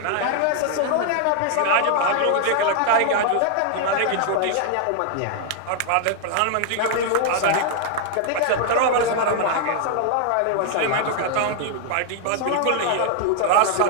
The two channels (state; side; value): different; both; correlation 0.00